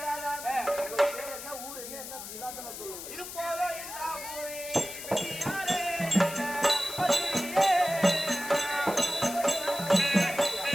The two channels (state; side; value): noise; left; hiss, 10 dB below the sound